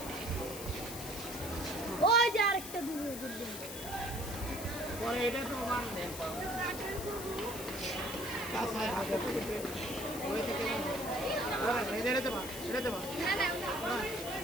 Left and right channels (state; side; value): noise; left; hiss, 9 dB below the sound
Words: ওই যে আরেকটা দূরে পরে এটা তো মান দেন ওই থেকে এটা দেবা না না